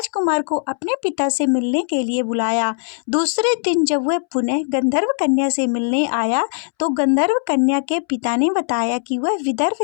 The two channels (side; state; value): right; silent; 66 dB below the other